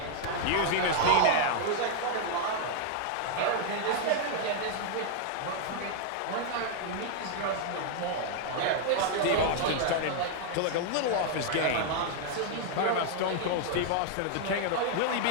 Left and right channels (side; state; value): both; different; correlation 0.00